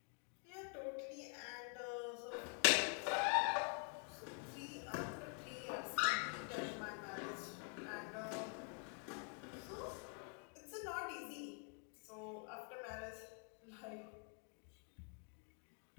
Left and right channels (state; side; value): quieter; right; 35.9 dB